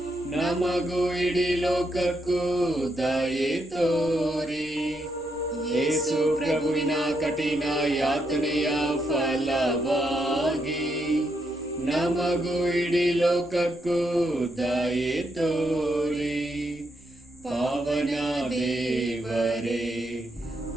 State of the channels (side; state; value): both; normal; correlation 0.80